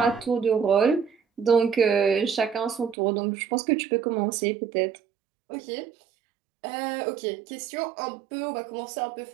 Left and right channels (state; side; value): drops out; left; at 3.0 s